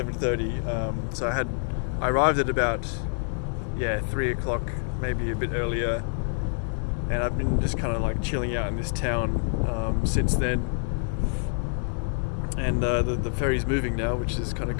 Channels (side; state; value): right; silent; digital silence